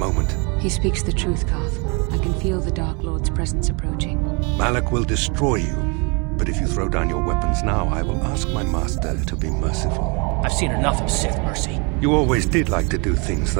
He speaks the truth, Carth. I can feel the Dark Lord's presence approaching. Malak will destroy you. But if you throw down your weapons now, I will ask my master to be merciful. I've seen enough of Sith mercy. You always did like to do things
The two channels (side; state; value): left; quieter; 31.9 dB